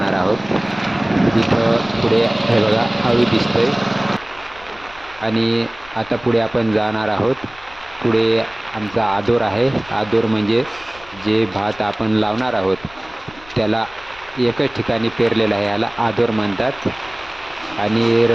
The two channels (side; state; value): left; noise; rumble, 23 dB below the sound